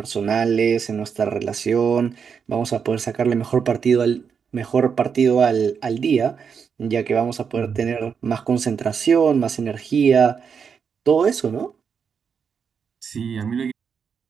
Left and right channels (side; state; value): left; quieter; 6.5 dB